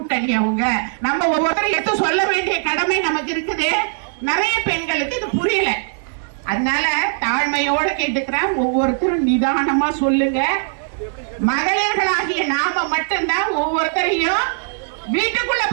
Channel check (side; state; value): left; silent; digital silence